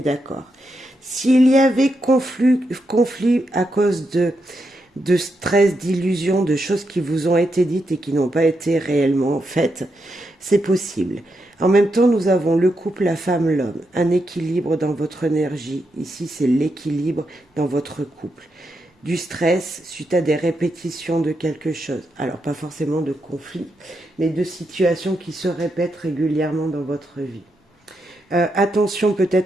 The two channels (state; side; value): normal; both; correlation 0.83